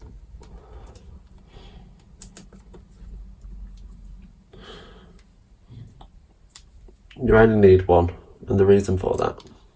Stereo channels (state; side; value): identical; both; correlation 1.00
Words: You only need one, and the reason for that,